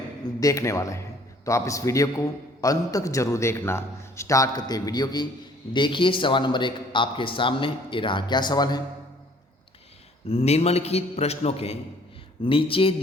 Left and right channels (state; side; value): normal; both; correlation 0.57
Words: देखने वाले हैं। तो आप इस वीडियो को अंत तक जरूर देखना। स्टार्ट करते हैं वीडियो की। देखिए सवाल नंबर 1 आपके सामने ये रहा। क्या सवाल है? निम्नलिखित प्रश्नों के नीचे